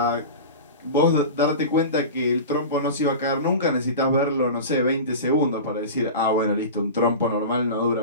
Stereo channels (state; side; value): inverted; both; correlation -0.30